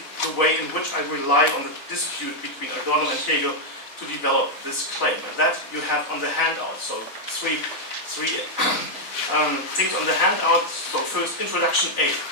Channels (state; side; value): late; right; 4.0 ms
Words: the way in which I rely on the dispute between Adorno and Hegel to develop this claim. And that you have on the handout. So three things on the handout. So first, introduction A.